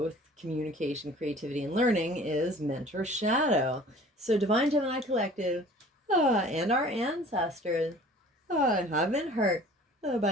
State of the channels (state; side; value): normal; both; correlation 0.48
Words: communication, creativity, and learning is mentor shadow. So Divine Gemini Collective and our ancestors have been hurt